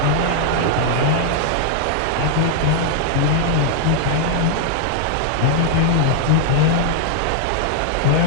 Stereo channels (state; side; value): different; both; correlation -0.01